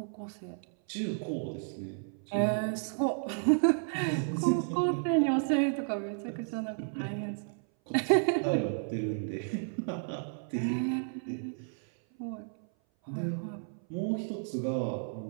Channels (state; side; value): silent; left; 56 dB below the other